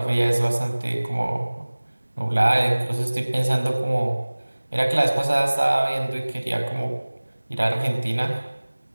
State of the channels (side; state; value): both; inverted; correlation -1.00